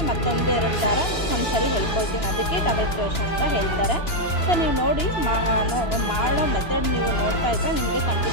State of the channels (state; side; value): late; right; 2.9 ms